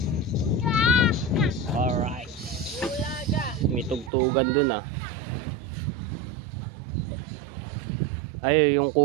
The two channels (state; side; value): drops out; left; at 4.1 s